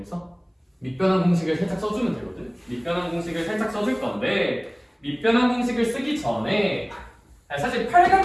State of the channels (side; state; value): both; identical; correlation 1.00